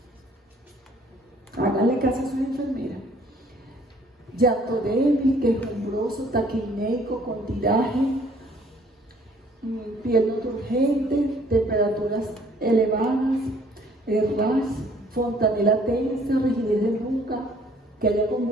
Háganle caso a sus enfermeras. Llanto débil, quejumbroso, taquineico, con tiraje, piel no turgente, temperaturas elevadas, ras, fontanela tensa, rigidez de nuca, que haya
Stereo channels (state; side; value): normal; both; correlation 0.59